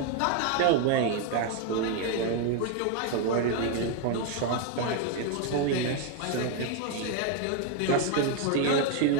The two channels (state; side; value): different; both; correlation 0.01